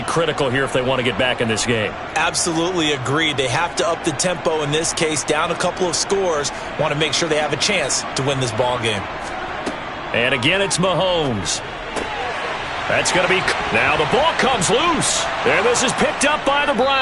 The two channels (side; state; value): both; identical; correlation 1.00